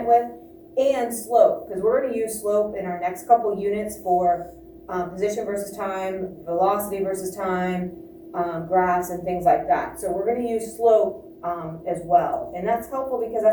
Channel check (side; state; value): both; identical; correlation 1.00